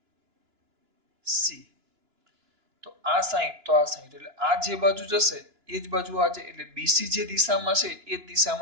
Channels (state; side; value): late; left; 2.9 ms